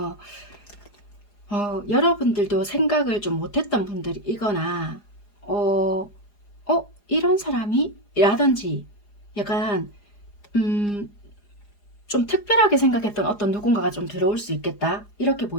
여러분들도 생각을 좀 못했던 분들이거나 이런 사람이? 라든지 약간 좀 특별하게 생각했던 어떤 누군가가 좀 들어올 수 있겠다, 이렇게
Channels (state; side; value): late; right; 4.9 ms